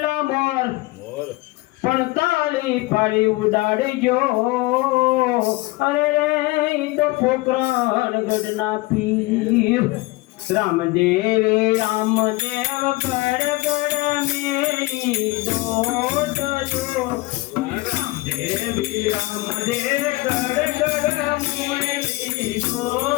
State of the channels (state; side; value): quieter; right; 21.6 dB